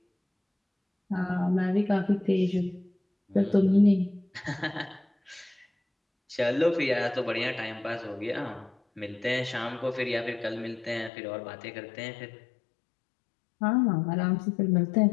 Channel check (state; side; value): drops out; right; at 11.1 s